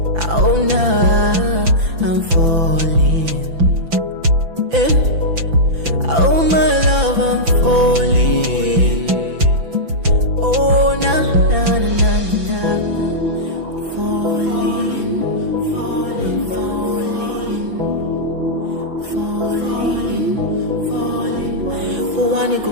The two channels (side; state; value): left; late; 5.9 ms